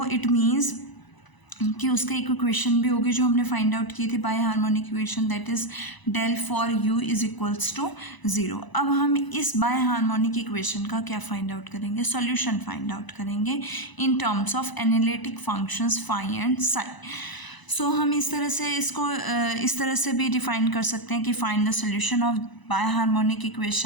इट मीन्स कि उसका एक इक्वेशन भी होगी जो हमने फाइंड आउट की थी biharmonic equation, that is del four u is equals to 0। अब हम इस बाय हार्मोनिक इक्वेशन का क्या फाइंड आउट करेंगे, सॉल्यूशन फाइंड आउट करेंगे in terms of analytic functions phi and psi. So हम इस तरह से इसको इस तरह से भी डिफाइन कर सकते हैं कि find the solution of biharmonic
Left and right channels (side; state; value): right; late; 1.0 ms